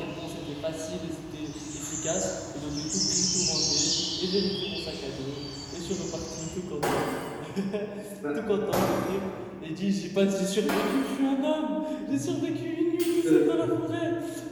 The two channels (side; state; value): both; identical; correlation 1.00